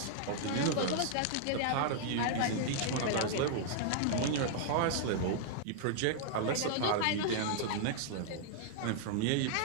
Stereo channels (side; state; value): both; different; correlation -0.01